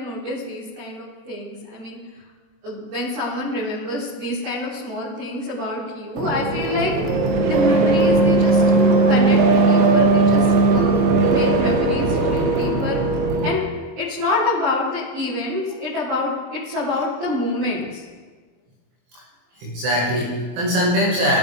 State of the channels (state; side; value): late; left; 23 ms